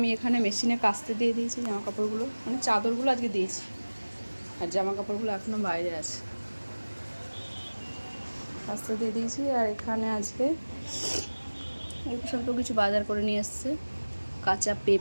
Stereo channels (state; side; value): inverted; both; correlation -1.00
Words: এখানে মেশিনে কাচতে দিয়ে দিয়েছি জামা কাপড়গুলো, মানে চাদরগুলো আজকে দিয়েছি আর জামা কাপড়গুলো এখনও বাইরে আছে, কাচতে দিয়ে দিয়েছি। আর এখানে আজকে অল্প স্বল্প কিছু বাজার করে নিয়ে এসছে, কাঁচা